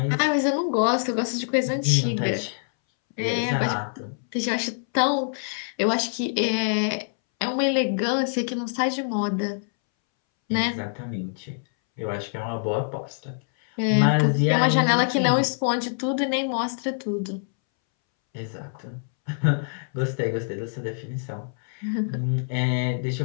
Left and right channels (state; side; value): silent; right; 62 dB below the other